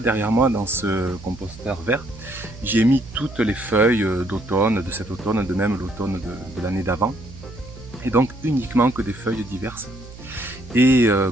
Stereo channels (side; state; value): right; noise; hum, 16 dB below the sound